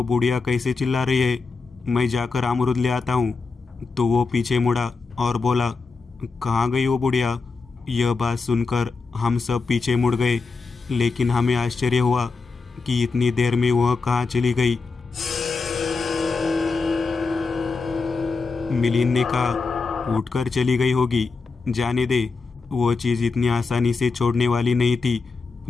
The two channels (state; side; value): quieter; right; 4.3 dB